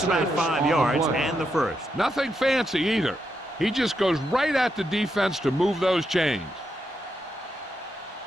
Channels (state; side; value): normal; both; correlation 0.83